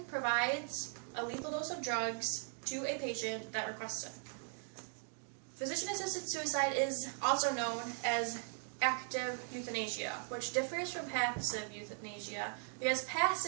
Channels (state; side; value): silent; left; 52 dB below the other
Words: provides a lethal dose of drugs to a patient that requests it. Physician-assisted suicide is also known as active euthanasia, which differs from passive euthanasia, because